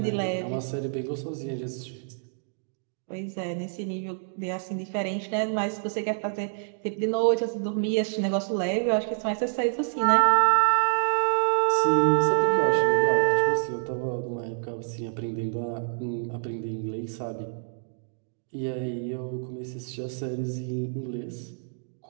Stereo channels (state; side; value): silent; left; digital silence